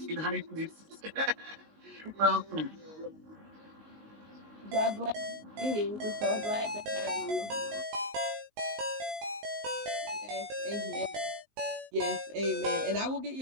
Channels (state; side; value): late; left; 19 ms